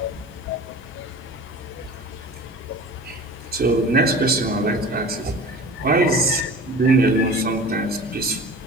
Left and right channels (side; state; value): both; normal; correlation 0.38